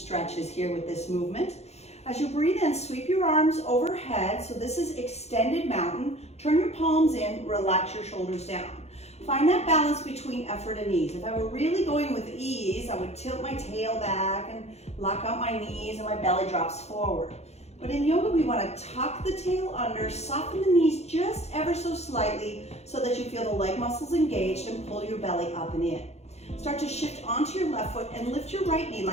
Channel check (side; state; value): right; late; 0.31 ms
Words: here with this movement. As you breathe in, sweep your arms overhead. So this is extended mountain. Turn your palms in, relax your shoulders down. Find that balance between effort and ease. If I were really going with ease, I would tilt my tail back and lock out my knees and my belly drops forward. But in yoga, we want to tuck the tail under, soften the knees just ever so slightly so that you feel the leg muscles engaged and pull your belly up and in. Start to shift onto your left foot and lift your right knee